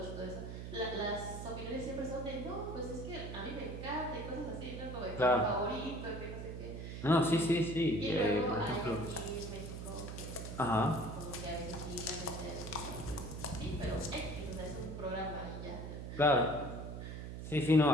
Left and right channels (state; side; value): noise; right; hum, 7 dB below the sound